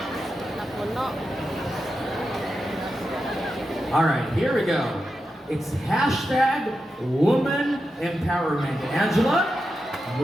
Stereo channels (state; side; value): normal; both; correlation 0.89